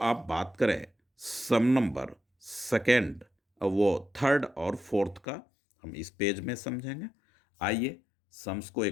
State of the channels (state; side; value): drops out; right; at 5.2 s